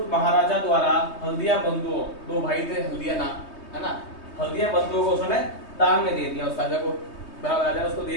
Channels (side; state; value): right; late; 3.2 ms